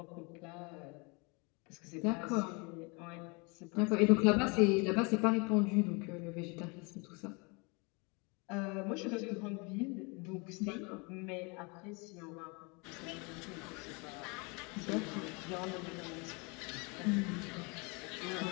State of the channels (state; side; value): quieter; right; 30.2 dB